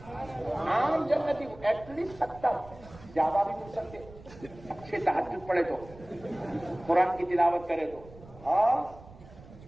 عام جنتی کو ایٹ لیسٹ 70، زیادہ بھی مل سکتے، اچھے تہجد پڑھے تو، قرآن کی تلاوت کرے تو۔ ہاں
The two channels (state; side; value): noise; right; rumble, 20 dB below the sound